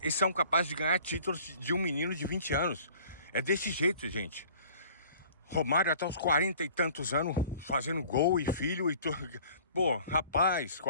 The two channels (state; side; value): inverted; both; correlation -0.50